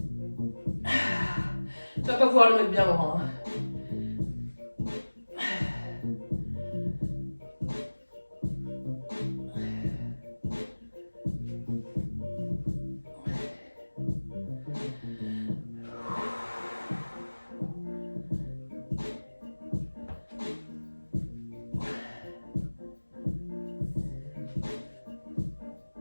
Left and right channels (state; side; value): inverted; both; correlation -1.00